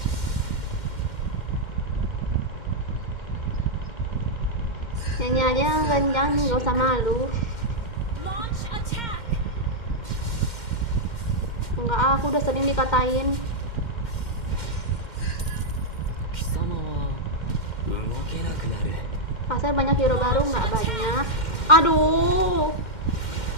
Nyanyi aja yang kencang, nggak usah malu. Launch attack. Enggak, aku udah sering dikatain. 貴様は動けなくなる Kasar banyak hero baru nggak banyak. Aduh.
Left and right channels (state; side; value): late; right; 2.1 ms